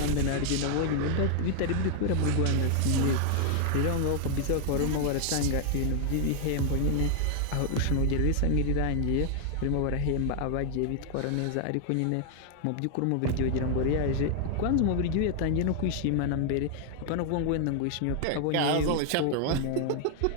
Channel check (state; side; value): different; both; correlation 0.00